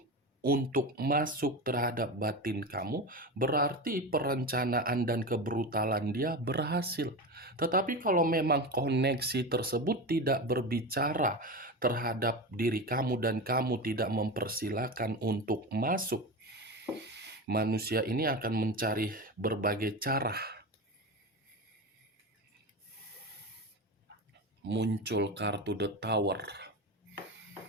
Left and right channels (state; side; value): normal; both; correlation 0.23